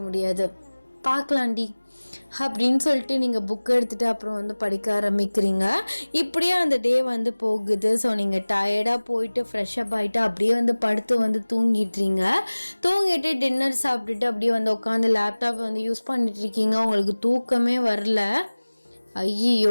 முடியாது. பார்க்கலாண்டி அப்படின்னு சொல்லிட்டு நீங்கள் புக் எடுத்துகிட்டு அப்புறம் படிக்க ஆரம்பிக்கிறீங்க. இப்படியே அந்த டே போகுது. ஸோ நீங்கள் டயர்டாக போயிட்டு ஃப்ரெஷ்அப் ஆகிட்டு அப்படியே படுத்து தூங்கிட்டுறீங்க. தூங்கிட்டு டின்னர் சாப்பிட்டுட்டு அப்படியே உட்காந்து லேப்டாப் யூஸ் பண்ணிட்டுருக்கீங்க. உங்களுக்கு தூக்கமே வரல.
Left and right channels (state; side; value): inverted; both; correlation -1.00